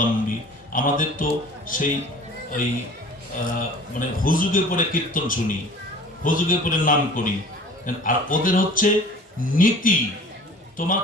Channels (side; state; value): both; normal; correlation 0.45